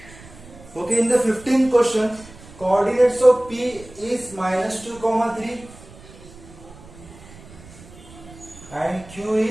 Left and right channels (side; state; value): right; noise; rumble, 20 dB below the sound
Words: Okay, in the 15th question, coordinates of P is minus 2 comma 3 and Q